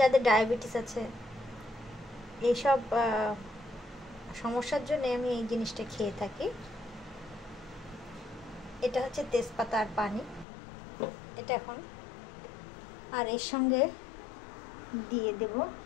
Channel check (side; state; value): right; drops out; at 10.5 s